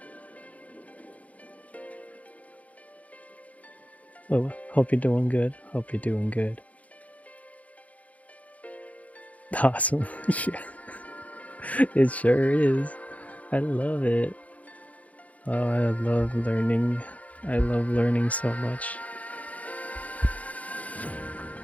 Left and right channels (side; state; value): right; late; 0.069 ms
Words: Oh, hope you're doing good. Hope you're doing good. Awesome. Yeah. It sure is. I love it. Oh, I love learning. I love learning so much.